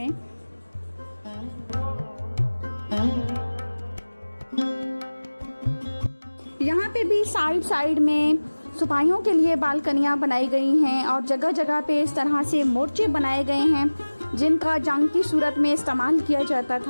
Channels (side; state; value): both; inverted; correlation -1.00